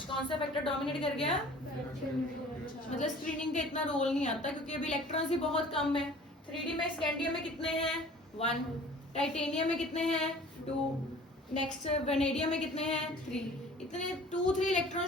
कौन सा फैक्टर डोमिनेट कर गया, मतलब स्क्रीनिंग का इतना रोल नहीं आता क्योंकि अभी इलेक्ट्रॉन्स ही बहुत कम है। 3D में स्कैंडियम में कितने हैं 1, टाइटेनियम में कितने हैं 2, नेक्स्ट वेनेडियम में कितने हैं 3। इतने 2-3 इलेक्ट्रॉन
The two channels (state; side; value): normal; both; correlation 0.47